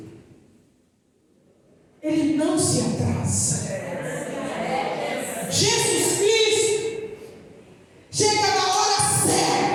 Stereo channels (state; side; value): identical; both; correlation 1.00